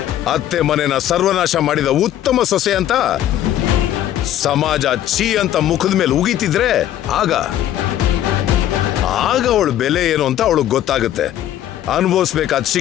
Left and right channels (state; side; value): quieter; right; 12.0 dB